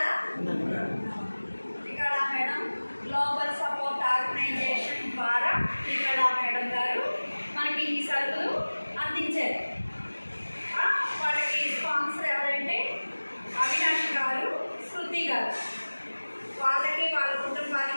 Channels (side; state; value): both; inverted; correlation -1.00